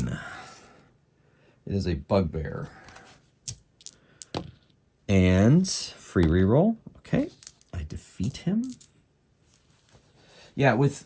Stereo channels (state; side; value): identical; both; correlation 1.00